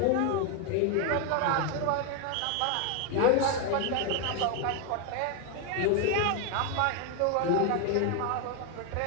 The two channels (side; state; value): both; different; correlation 0.01